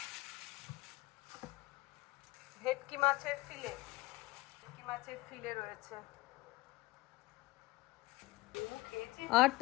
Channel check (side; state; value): right; quieter; 20.3 dB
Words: ভেটকি মাছের ফিলে রয়েছে, আর